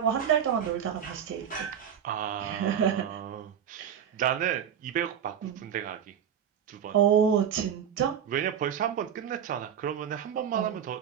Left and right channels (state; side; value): quieter; left; 8.7 dB